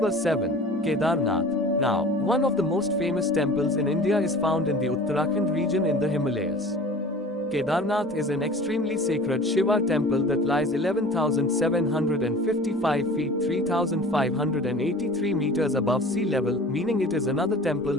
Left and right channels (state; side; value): normal; both; correlation 0.42